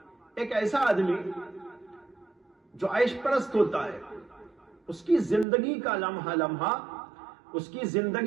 ایک ایسا آدمی جو عیش پرست ہوتا ہے، اس کی زندگی کا لمحہ لمحہ، اس کی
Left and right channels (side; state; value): left; drops out; at 5.5 s